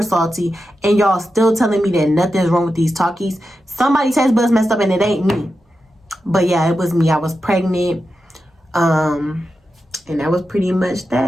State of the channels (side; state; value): both; normal; correlation 0.90